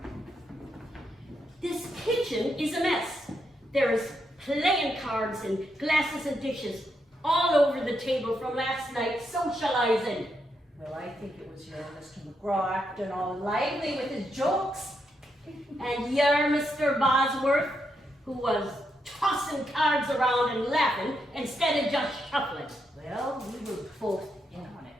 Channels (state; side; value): normal; both; correlation 0.81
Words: This kitchen is a mess. There's playing cards and glasses and dishes all over the table from last night's socializing. Well, I think it was your Mr. McGraw acting all lively with his jokes. And you're Mr. Bosworth, who was tossing cards around and laughing instead of just shuffling. Well, we were both in on